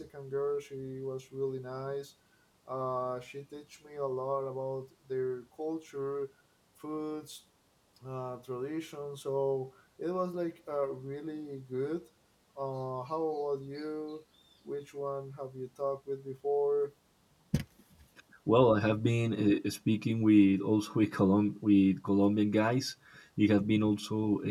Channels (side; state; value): both; identical; correlation 1.00